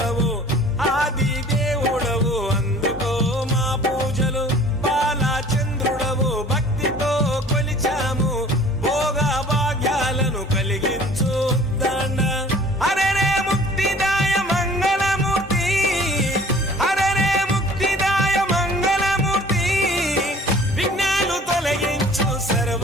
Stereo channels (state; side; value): normal; both; correlation 0.50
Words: ఆది దేవుడవు అందుకో మా పూజలు బాలచంద్రుడవు భక్తితో కొలిచాము భోగ భాగ్యాలను కలిగించు దండ అరెరే ముక్తిదాయ మంగళమూర్తి అరెరే ముక్తిదాయ మంగళమూర్తి విఘ్నాలు తొలగించు